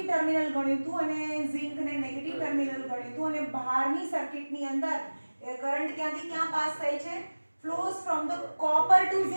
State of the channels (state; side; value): inverted; both; correlation -1.00